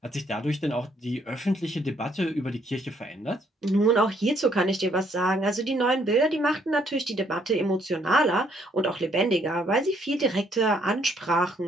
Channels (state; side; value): normal; both; correlation 0.68